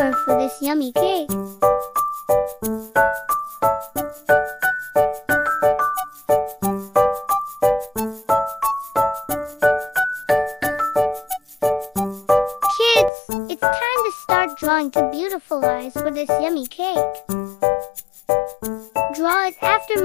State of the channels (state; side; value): drops out; right; at 13.1 s